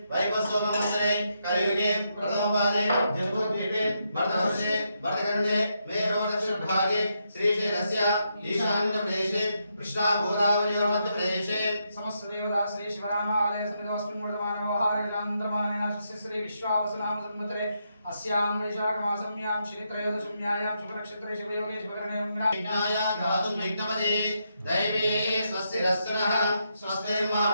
वैवस्वतमन्त्रे कलियुगे प्रथमपादे जम्बूद्वीपे भरतवर्षे भरतखण्डे मेरोदक्षिणभागे श्रीशैलस्य ईशान्यप्रदेशे कृष्णा गोदावरीमध्यप्रदेशे समस्त देवता श्री शिवरामालय समितोऽस्मिन् वर्तमानव्यवहारगिलान्तरमानेन श्री विश्वावसनाम संवत्सरे अस्यां वैशाखमासम्यां श्रीत्रयोदशम्यायां शुभनक्षत्रे शुभयोगे शुभकरणे विनाय धातुं विघ्नपदे दैवे स्वस्तिरस्तुनः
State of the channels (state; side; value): inverted; both; correlation -0.81